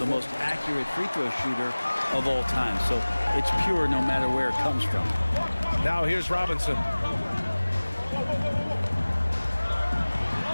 most accurate free throw shooter of all time, so it's pure no matter where it comes from. Now here's Robinson.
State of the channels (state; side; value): inverted; both; correlation -1.00